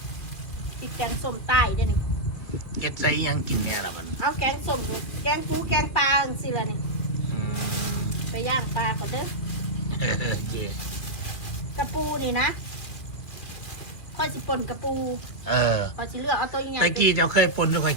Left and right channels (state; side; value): late; right; 2.7 ms